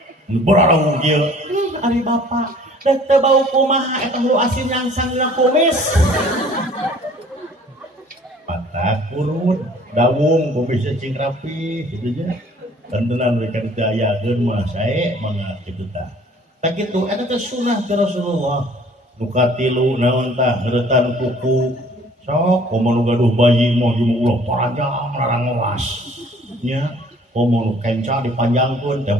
nu bararang kieu ari bapak dek teu bau kumaha eta hulu asin nyangsang dina kumis patah kurun dawung kumisnya cing rapi gitu nya tentenan mereka didayakeun mah sae mangga kitu tah tak kitu eta teh sunah ti Rasulullah nu katilu naon tah ngeuretan kuku sok komo nu gaduh bayi mah jeung ulah parajang larang ngewas nya komo nu kenca dipanjangkeun teh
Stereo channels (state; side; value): normal; both; correlation 0.54